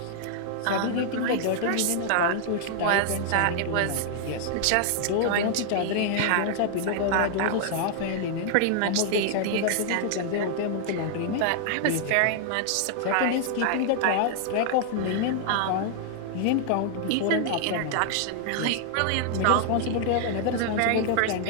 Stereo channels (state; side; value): different; both; correlation 0.00